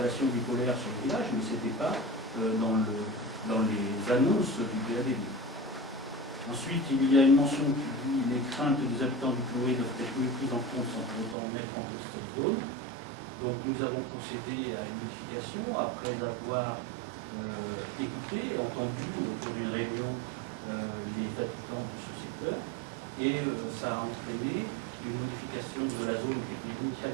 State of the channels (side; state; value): left; drops out; at 11.4 s